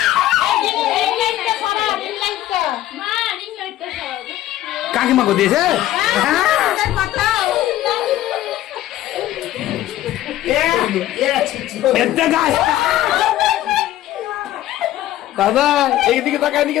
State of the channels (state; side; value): quieter; right; 13.9 dB